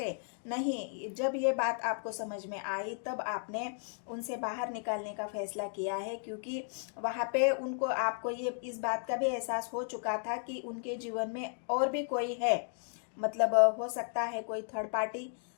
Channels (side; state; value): right; silent; 55 dB below the other